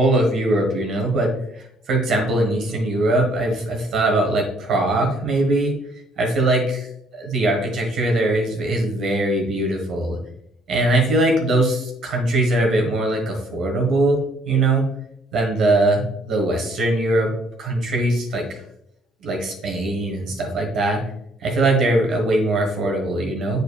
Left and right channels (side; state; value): both; normal; correlation 0.64